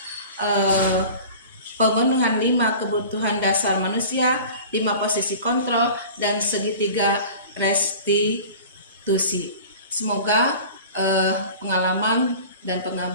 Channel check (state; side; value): inverted; both; correlation -0.40